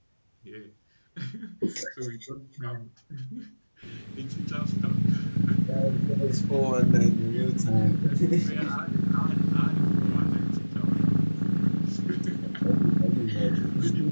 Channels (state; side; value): inverted; both; correlation -1.00